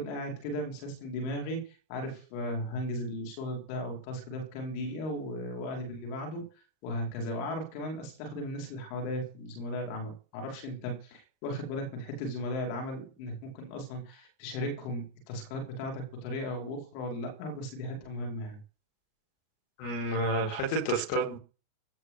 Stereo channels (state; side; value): late; right; 38 ms